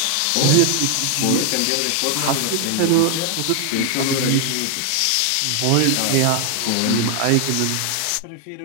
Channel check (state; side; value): different; both; correlation 0.00